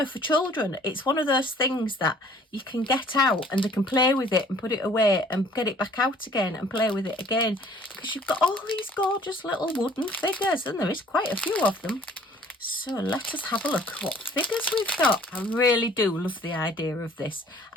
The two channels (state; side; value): normal; both; correlation 0.55